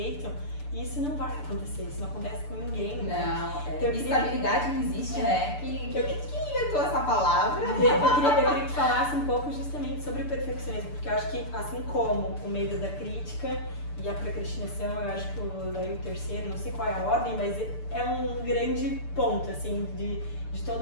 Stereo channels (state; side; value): late; right; 6.8 ms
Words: E isso não vai acontecer, isso não acontece com ninguém. Não, então, estabilidade não existe, né? Quem inventou essa palavra? Eu queria que falasse um pouco justamente sobre o perfeccionismo, porque eu acho que assim como o medo da crítica e a procrastinação, eu acho que daí o terceiro, não sei qual é a ordem, mas é um grande ponto, assim, de